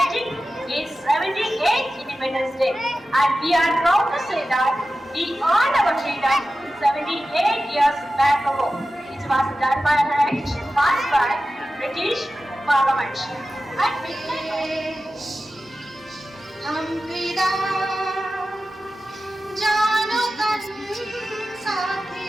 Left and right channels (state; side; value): normal; both; correlation 0.94